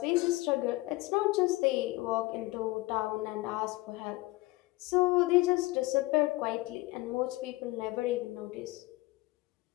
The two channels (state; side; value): quieter; right; 20.8 dB